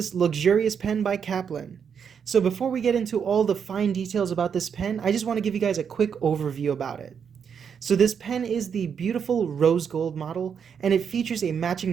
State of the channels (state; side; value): quieter; left; 7.1 dB